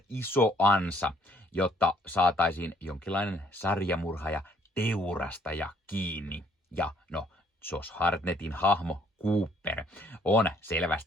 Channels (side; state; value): both; normal; correlation 0.64